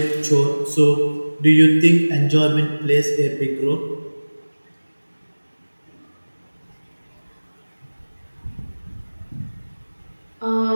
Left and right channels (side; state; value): both; inverted; correlation -1.00